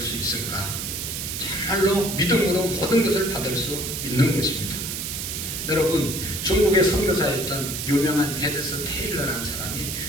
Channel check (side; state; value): right; noise; hiss, 4 dB below the sound